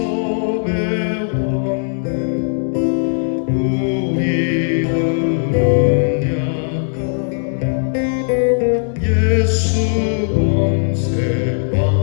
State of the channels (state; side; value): silent; right; digital silence